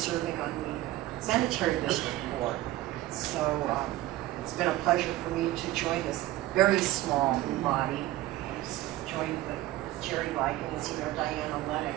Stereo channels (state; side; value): quieter; left; 16.0 dB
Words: on the sanitary district board. So it's been a pleasure for me to join this very small body. Joined with Jerry Like and as you know, Diana Lennox